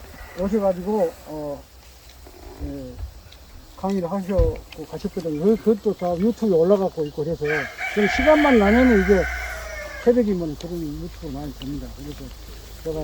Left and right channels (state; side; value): identical; both; correlation 1.00